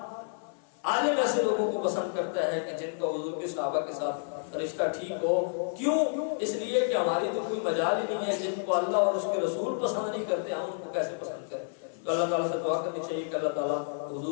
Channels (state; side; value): silent; right; 57 dB below the other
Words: عالم ایسے لوگوں کو پسند کرتا ہے کہ جن کا حضور کے صحابہ کے ساتھ رشتہ ٹھیک ہو۔ کیوں؟ اس لیے کہ ہماری تو کوئی مجال ہی نہیں ہے، جن کو اللہ اور اس کے رسول پسند نہیں کرتے ہم ان کو کیسے پسند کریں؟ تو اللہ تعالیٰ سے دعا کرنی چاہیے کہ اللہ تعالیٰ